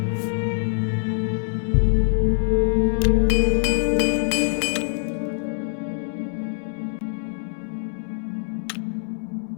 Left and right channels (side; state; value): right; silent; 63 dB below the other